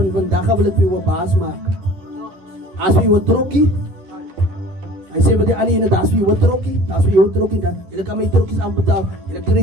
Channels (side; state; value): left; late; 11 ms